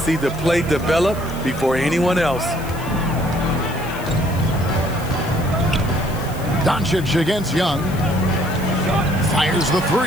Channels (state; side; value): noise; left; hiss, 18 dB below the sound